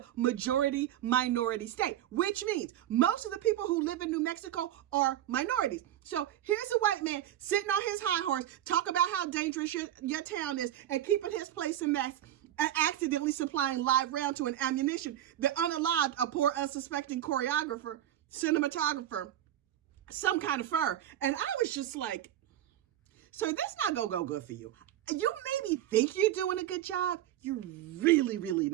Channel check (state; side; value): quieter; left; 12.3 dB